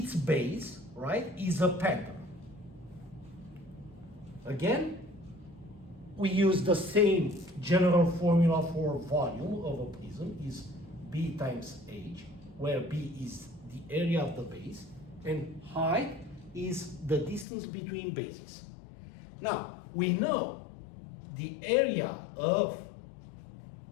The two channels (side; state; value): right; drops out; at 17.4 s